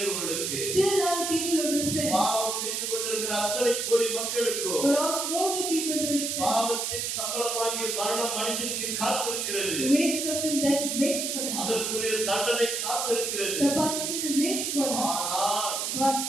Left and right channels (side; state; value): right; noise; hiss, 1 dB below the sound